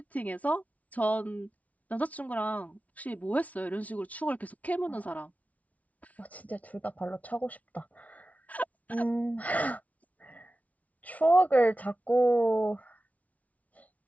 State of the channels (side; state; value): right; late; 0.069 ms